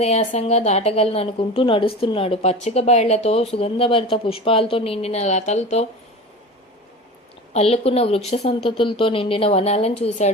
దాటగలను అనుకుంటూ నడుస్తున్నాడు. పచ్చిక బయళ్లతో సుగంధభరిత పుష్పాలతో నిండిన లతలతో అల్లుకున్న వృక్ష సంతతులతో నిండిన వనాలను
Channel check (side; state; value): both; normal; correlation 0.33